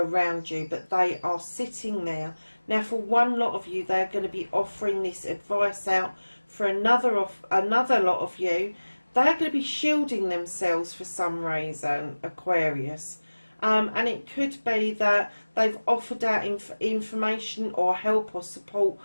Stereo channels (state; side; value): inverted; both; correlation -1.00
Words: you, but they are sitting there. Now for one lot of you, they're going to be offering this advice out. For another lot of you, they're going to be shielding themselves for some reason, Aquarius. And it could be that they've offered out information or help or support